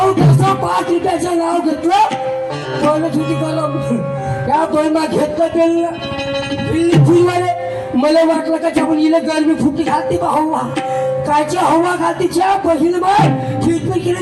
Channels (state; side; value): identical; both; correlation 1.00